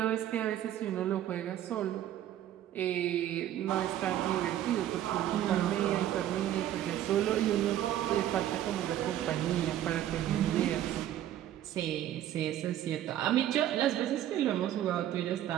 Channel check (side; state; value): left; quieter; 12.0 dB